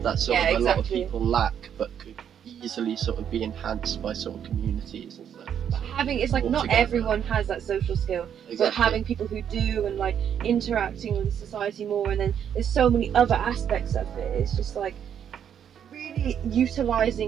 That's sort of a lot of people lack, but could easily sort of be enhanced by sort of communities and stuff. But it's like not everyone has that social skill, but having people who do, and like interacting with society more, and then there's so many other aspects of it. It's just like really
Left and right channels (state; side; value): quieter; left; 8.8 dB